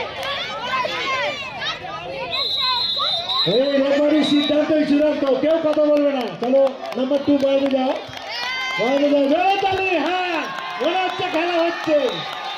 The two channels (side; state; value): both; identical; correlation 1.00